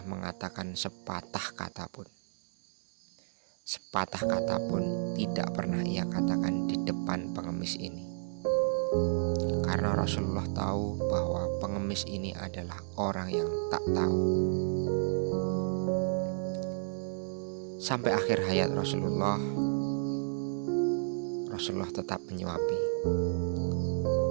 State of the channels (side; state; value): left; silent; digital silence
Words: mengatakan sepatah kata pun. Sepatah kata pun tidak pernah ia katakan di depan pengemis ini. Karena Rasulullah tahu bahwa pengemis ini adalah orang yang tak tahu. Sampai akhir hayat Rasulullah tetap menyuapi.